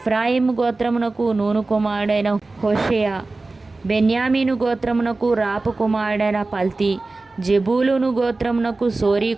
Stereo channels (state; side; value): quieter; left; 3.4 dB